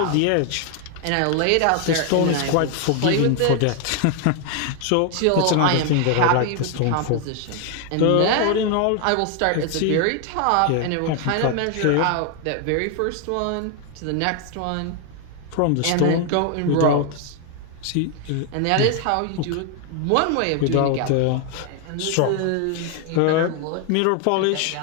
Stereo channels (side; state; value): both; different; correlation 0.00